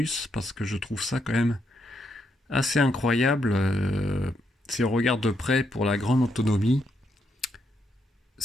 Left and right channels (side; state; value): both; normal; correlation 0.79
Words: parce que je trouve ça quand même assez incroyable si on regarde de près pour la grande autonomie.